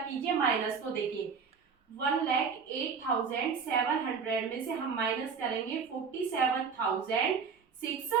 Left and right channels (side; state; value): left; quieter; 5.8 dB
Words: माइनस। तो देखिए 1,08,700 में से हम माइनस करेंगे